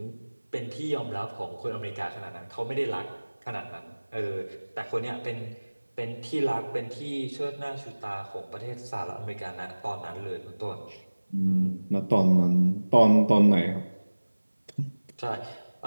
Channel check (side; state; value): both; inverted; correlation -1.00